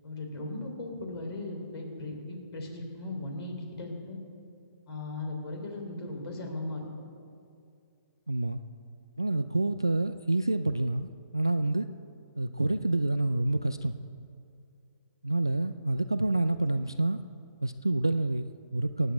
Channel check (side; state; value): both; inverted; correlation -0.94